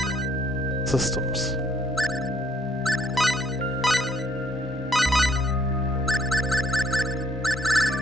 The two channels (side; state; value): both; normal; correlation 0.66